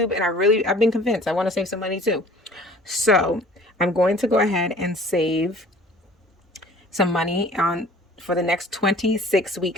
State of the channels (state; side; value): normal; both; correlation 0.49